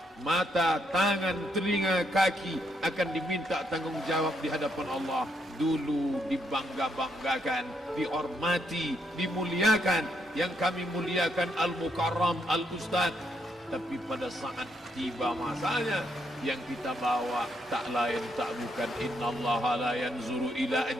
Mata, tangan, telinga, kaki akan diminta tanggung jawab di hadapan Allah. Dulu dibangga-banggakan, dihormati, dimuliakan. Yang kami muliakan Al-Mukarram, Al-Ustadz. Tapi pada saat tiba masanya, yang kita bawa tak lain tak bukan innallaha la yanzuru ila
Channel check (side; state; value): both; normal; correlation 0.76